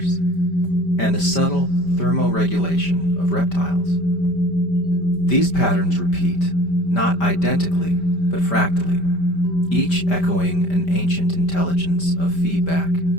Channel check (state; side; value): late; right; 5.1 ms